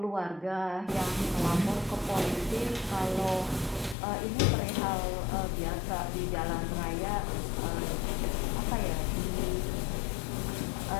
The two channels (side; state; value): right; drops out; at 4.0 s